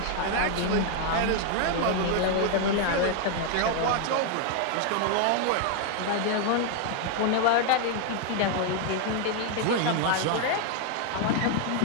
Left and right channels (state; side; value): different; both; correlation 0.00